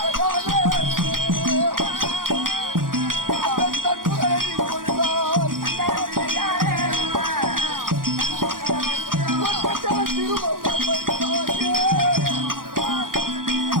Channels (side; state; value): left; late; 0.90 ms